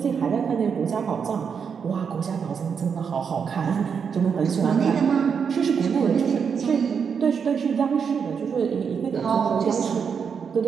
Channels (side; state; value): left; quieter; 6.5 dB